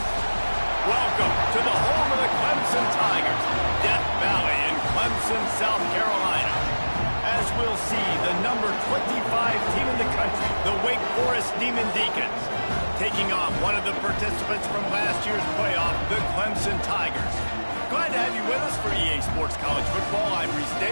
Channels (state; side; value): inverted; both; correlation -1.00